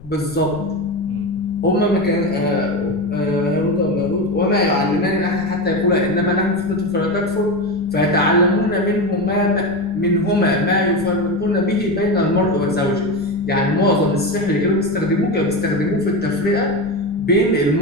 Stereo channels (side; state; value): left; noise; rumble, 19 dB below the sound